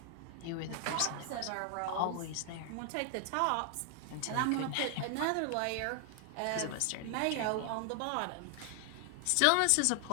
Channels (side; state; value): both; different; correlation 0.00